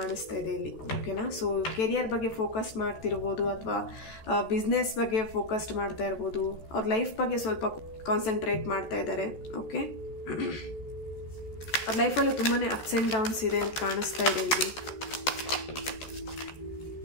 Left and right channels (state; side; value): late; right; 14 ms